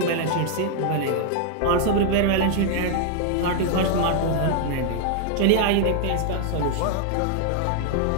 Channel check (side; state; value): both; different; correlation 0.00